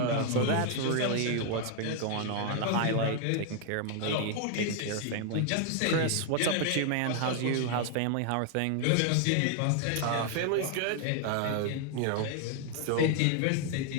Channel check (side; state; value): both; different; correlation 0.00